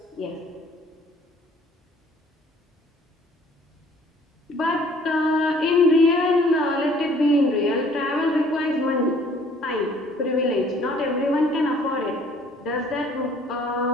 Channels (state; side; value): normal; both; correlation 0.57